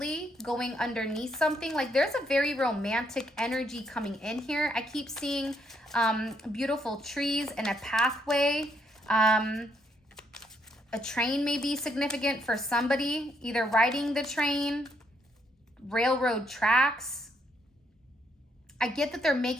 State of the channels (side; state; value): both; normal; correlation 0.73